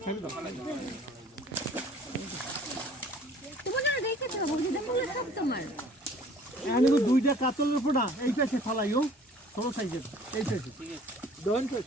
ছেড়ে দাও। তোমার না দেখেছো বন্ধুদের বলে সব তোমার। আমি দুইটা কাতলের উপর না এইটা সে ফালাইও ছোট সাইজের, এইটা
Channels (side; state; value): both; normal; correlation 0.52